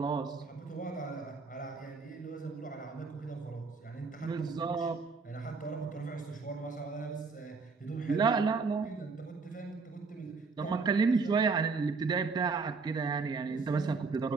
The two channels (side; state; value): left; quieter; 4.6 dB